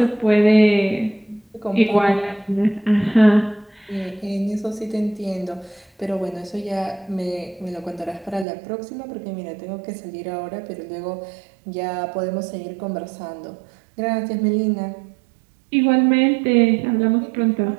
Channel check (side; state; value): left; drops out; at 8.5 s